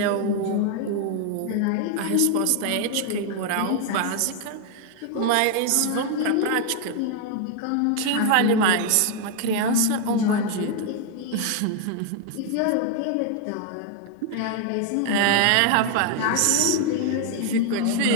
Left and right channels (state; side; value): different; both; correlation 0.00